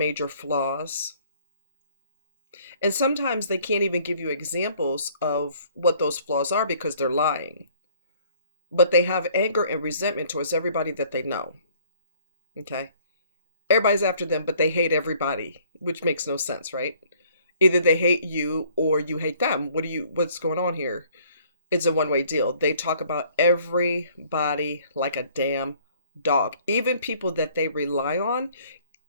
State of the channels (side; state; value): both; inverted; correlation -0.59